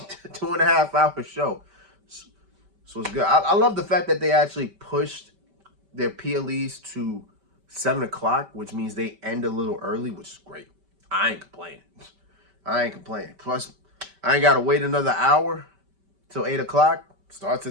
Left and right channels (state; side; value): late; left; 5.1 ms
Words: hour show. So it's good. I love the fact that they actually pushed their PLEs to 7 o'clock, which means they end a little early, which is great. I ain't complaining. I ain't complaining. Plus, I ain't got to wait another hour till 8 o'clock. Starts